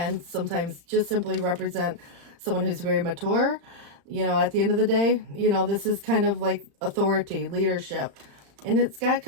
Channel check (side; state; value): left; late; 35 ms